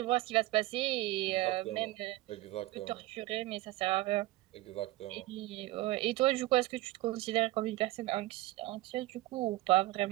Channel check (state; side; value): quieter; left; 17.9 dB